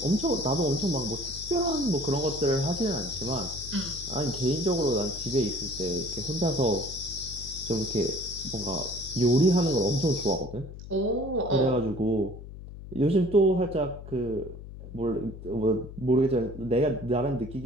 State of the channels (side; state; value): left; noise; hum, 13 dB below the sound